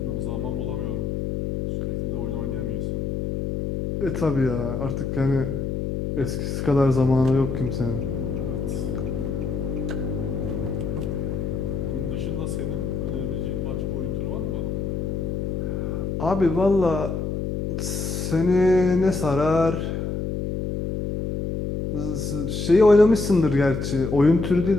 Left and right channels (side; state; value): left; noise; hum, 2 dB below the sound